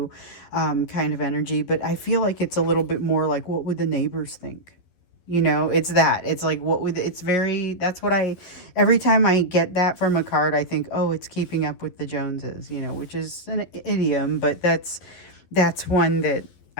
kind of energy. But I feel like it's a little bit more like, what would the neighbors think? You know, it's that. It's like, every time I get that from a card, I think, oh, it's keeping up with the Joneses, you know, which is an idiom, but that's one that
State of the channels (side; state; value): right; late; 11 ms